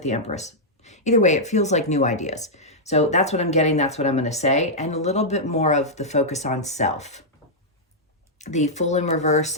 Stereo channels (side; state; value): both; normal; correlation -0.08